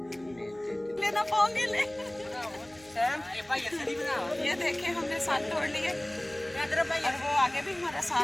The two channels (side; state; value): right; noise; hum, 26 dB below the sound